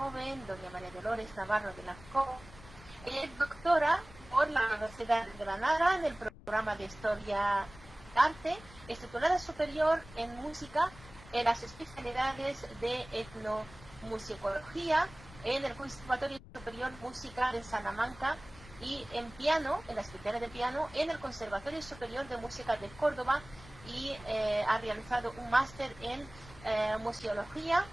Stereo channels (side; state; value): left; noise; rumble, 19 dB below the sound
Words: doña María Dolores Navarro de la Co. Es doctora por la Universidad de Granada en el programa de Historia Arte, es titulada superior en música en las especialidades de etnomusicología en el Conservatorio Superior de Música de Salamanca y en piano, en la especialidad de piano, en el Conservatorio Superior de Música de Córdoba, y ha realizado un máster en museología